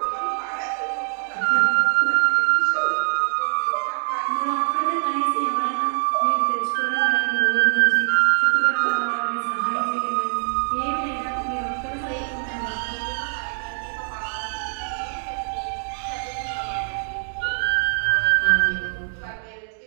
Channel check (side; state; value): left; silent; digital silence